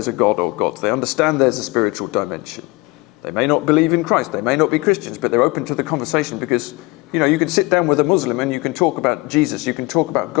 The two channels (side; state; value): right; quieter; 23.9 dB